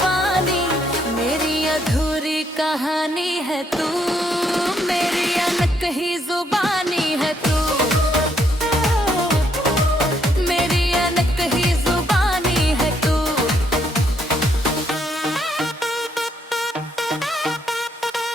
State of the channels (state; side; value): normal; both; correlation 0.73